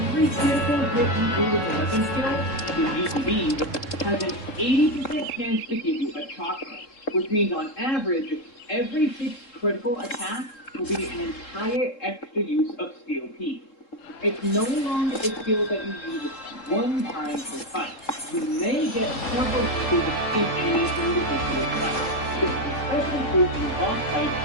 critical hit you do with a weapon skill, the GTBs, has an 80% chance to give you a chakra, which means on average, every 6 critical attacks will be an entire extra use of Steel P. It's no longer a skill that you use one time per fight. You may get several uses in any individual fight. This is especially true in boss fights,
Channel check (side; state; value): right; late; 3.7 ms